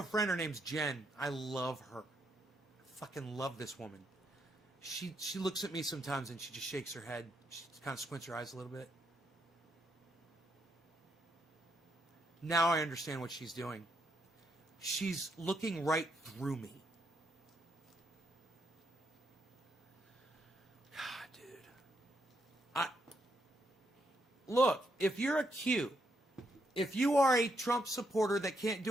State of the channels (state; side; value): normal; both; correlation 0.78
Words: friend, her name's Jen. I love her. I fucking love this woman. She looks at me sometimes and she just shakes her head. She kind of squints her eyes a little bit. Now I understand what she's doing. She's looking right through me. God, dude. Look, if you're a Q, if you are a Trump supporter that can't